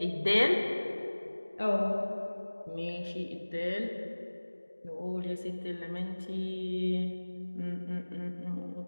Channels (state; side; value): inverted; both; correlation -1.00